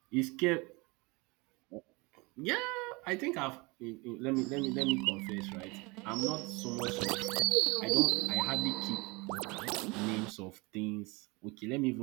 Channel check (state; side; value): quieter; left; 26.2 dB